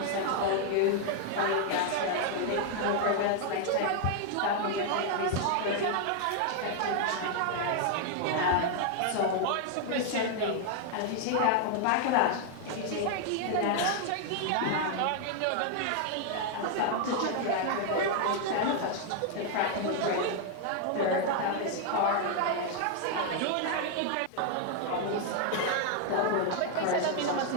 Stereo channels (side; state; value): both; different; correlation 0.00